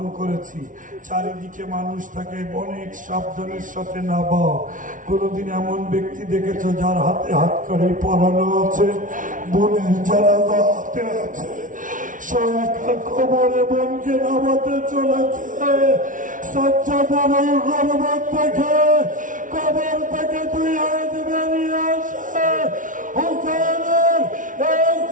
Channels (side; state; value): left; late; 0.38 ms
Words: করেছি, চারিদিকে মানুষ থাকে, অনেক সাবধানের সাথে নামাও। কোনদিন এমন ব্যক্তি দেখেছো যার হাতে হাত করে পরানো আছে, বোনের জানাজা হাতে আছে, সে একা কবরে বোনকে নামাতে চলেছে। সাজ্জাদের ওই গর্বত দেখে কবর থেকে দুই হাত বেরিয়ে আসে, হুসেনের এই